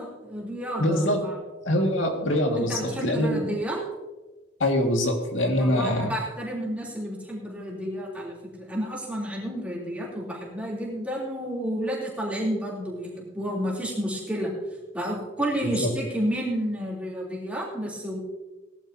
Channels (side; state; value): both; normal; correlation 0.52